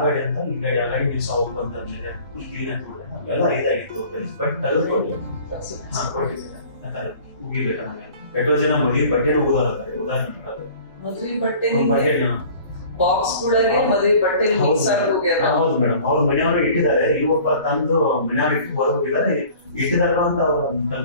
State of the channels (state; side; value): inverted; both; correlation -0.47